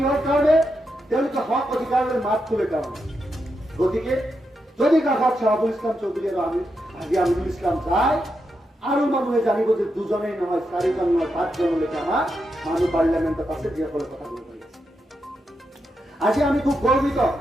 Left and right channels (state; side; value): normal; both; correlation 0.85